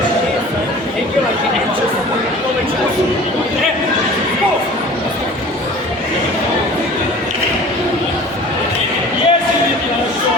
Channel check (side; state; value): both; normal; correlation 0.43